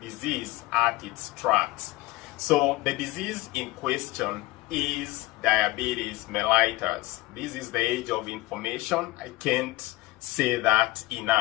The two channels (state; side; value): quieter; right; 19.6 dB